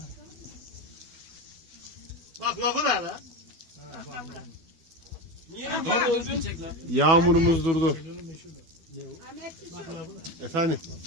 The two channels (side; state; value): left; late; 12 ms